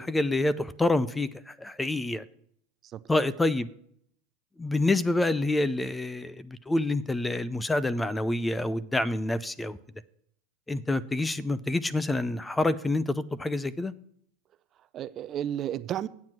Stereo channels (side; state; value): both; normal; correlation 0.88